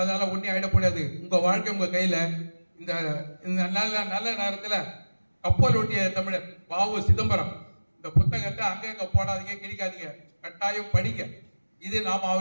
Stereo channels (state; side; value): inverted; both; correlation -1.00